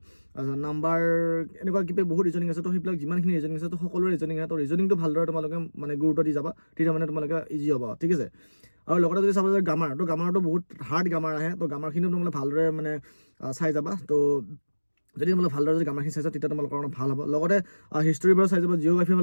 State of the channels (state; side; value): inverted; both; correlation -1.00